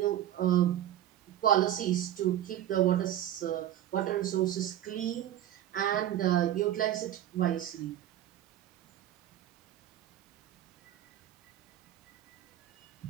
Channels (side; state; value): left; quieter; 11.9 dB